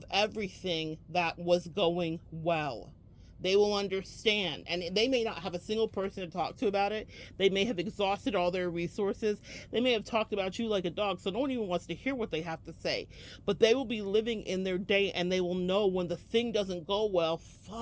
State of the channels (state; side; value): identical; both; correlation 1.00